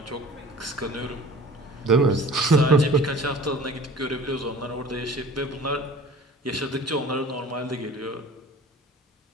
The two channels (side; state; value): both; normal; correlation 0.45